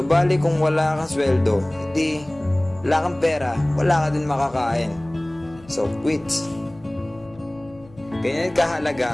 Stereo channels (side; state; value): left; noise; hum, 24 dB below the sound